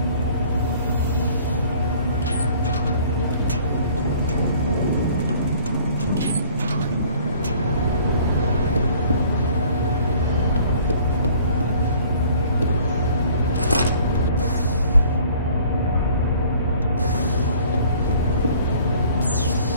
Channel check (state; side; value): inverted; both; correlation -0.54